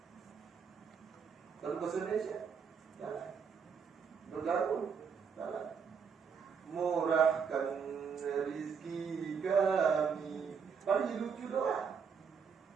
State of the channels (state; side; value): quieter; left; 6.3 dB